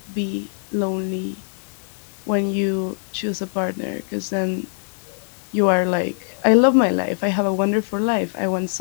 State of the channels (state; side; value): silent; right; digital silence